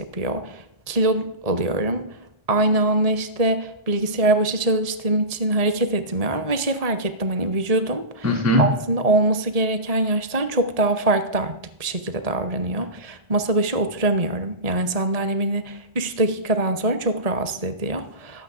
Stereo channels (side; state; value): left; late; 1.7 ms